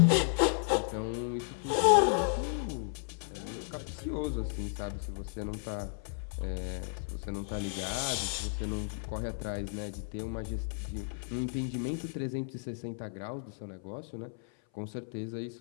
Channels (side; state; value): right; silent; 55 dB below the other